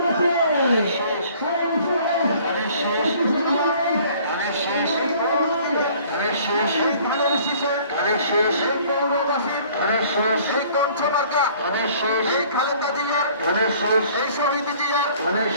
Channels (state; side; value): inverted; both; correlation -0.54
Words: এই শহীদ জিয়ার,